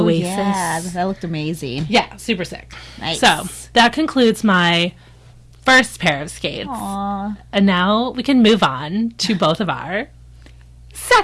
Yeah, that looked amazing. Yeah, super sick. Nice. So, that concludes my first pair of skates. Aww. And now we can move on to both of our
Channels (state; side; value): identical; both; correlation 1.00